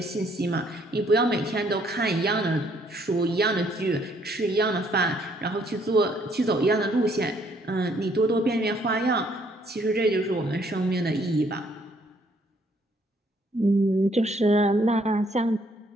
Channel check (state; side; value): normal; both; correlation 0.66